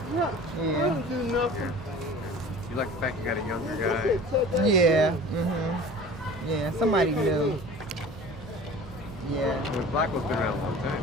Yeah. You like the fact you got a younger guy? Yeah. Yeah, somebody new. Yeah. Well, Blackwell's been around a long time.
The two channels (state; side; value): normal; both; correlation 0.42